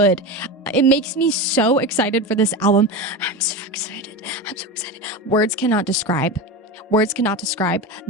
It makes me so excited for this album. I'm so excited. Words cannot describe.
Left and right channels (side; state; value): both; normal; correlation 0.22